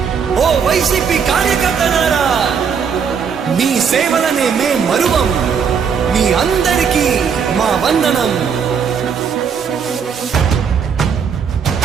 ఓ వైసీపీ కార్యకర్తలారా మీ సేవలనే మే మరువం మీ మీ అందరికీ మా వందనం.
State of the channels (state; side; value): quieter; left; 6.7 dB